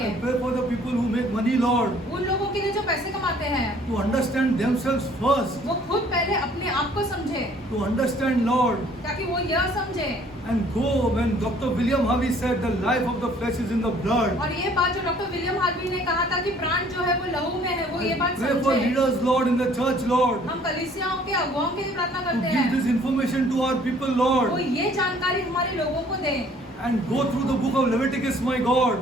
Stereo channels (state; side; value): normal; both; correlation 0.58